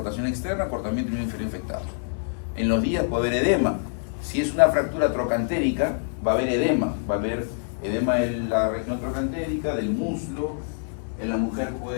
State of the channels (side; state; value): right; silent; 61 dB below the other